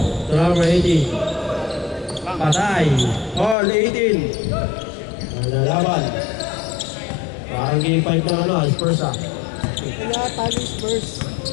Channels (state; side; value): drops out; right; at 3.6 s